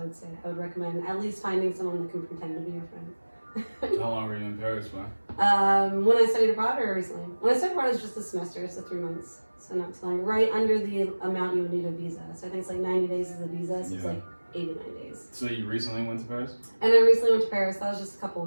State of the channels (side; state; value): both; inverted; correlation -1.00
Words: say I would recommend at least finding someone that can pretend to be your friend. How long were you in Paris for? When I studied abroad or recently? When I studied abroad, it was just a semester, so 3 months. So not too long. Right under the amount you would need a visa. So I think it's like 90 days is a visa, so it's like 89 days. So you recently went to Paris? And I recently went to Paris. That was just a couple